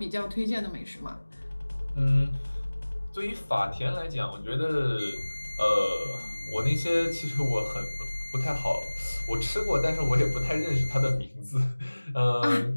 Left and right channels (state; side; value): inverted; both; correlation -1.00